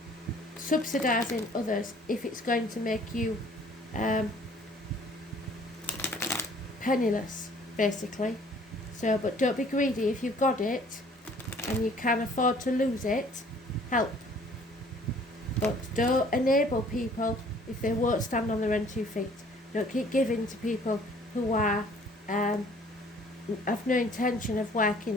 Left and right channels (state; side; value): normal; both; correlation 0.56